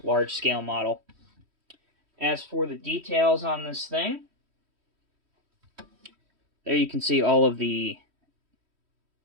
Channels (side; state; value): left; late; 3.1 ms